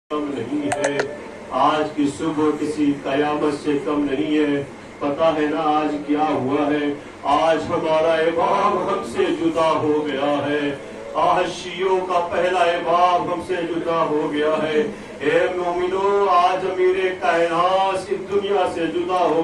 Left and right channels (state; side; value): identical; both; correlation 1.00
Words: کم نہیں ہے، آج کی صبح کسی قیامت سے کم نہیں ہے۔ پتا ہے نا آج کیا ہوا ہے؟ آج ہمارا امام ہم سے جدا ہو گیا ہے، آج شیعوں کا پہلا امام ہم سے جدا ہو گیا ہے۔ اے مومنو، آج امیر کائنات اس دنیا سے جدا